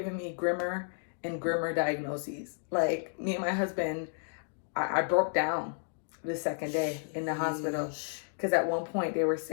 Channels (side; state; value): right; silent; digital silence